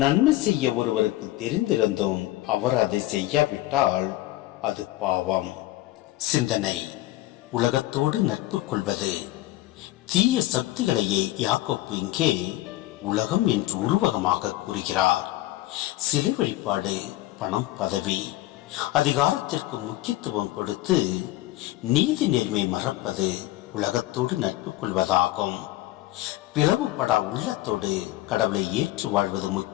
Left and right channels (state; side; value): quieter; right; 16.8 dB